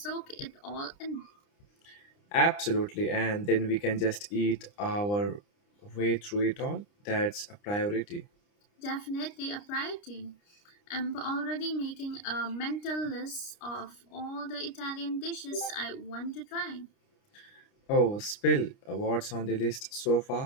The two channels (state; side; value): late; right; 29 ms